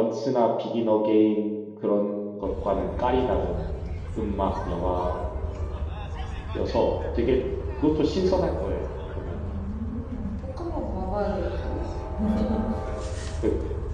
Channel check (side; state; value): both; identical; correlation 1.00